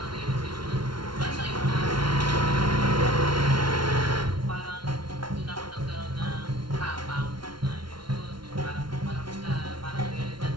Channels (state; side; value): late; left; 0.73 ms